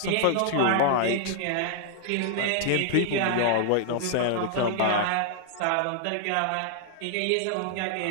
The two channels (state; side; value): different; both; correlation -0.01